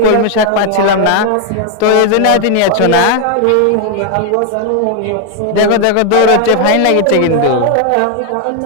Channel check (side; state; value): both; different; correlation 0.00